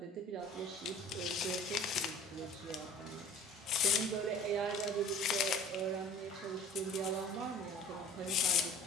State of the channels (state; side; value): normal; both; correlation 0.46